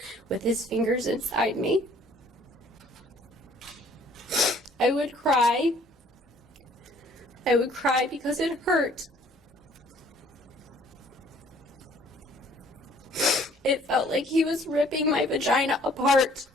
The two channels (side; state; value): both; normal; correlation 0.58